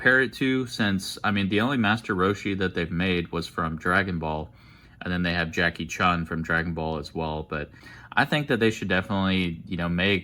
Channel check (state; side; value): identical; both; correlation 1.00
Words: it to, since, I mean, the only Master Roshi that they've made was from Dragon Ball, and then they have Jackie Chun from Dragon Ball as well. But I think that they should definitely, you know,